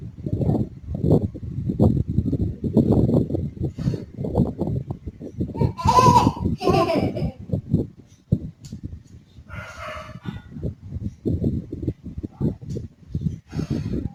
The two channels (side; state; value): both; identical; correlation 1.00